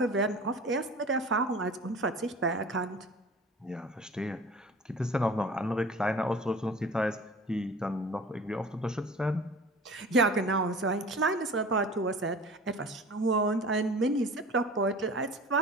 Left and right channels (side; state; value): both; normal; correlation 0.41